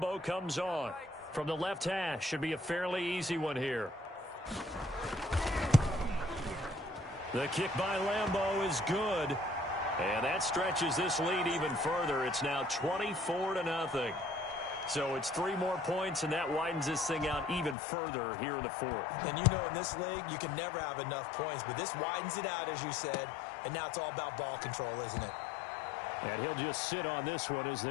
comes on. From the left hash, should be a fairly easy one here. The kick by Lambo is good. And that stretches this lead even further. It's now 24-0. So it's 3 more points, and that widens this thing out even further here in the 4th. And you know in this league, you can never have enough points. But this widens it out, as you said. And now it's all about ball control, isn't it? And he'll just sit on this one as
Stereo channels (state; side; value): drops out; right; at 17.8 s